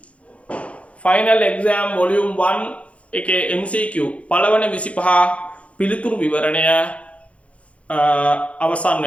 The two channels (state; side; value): late; right; 0.063 ms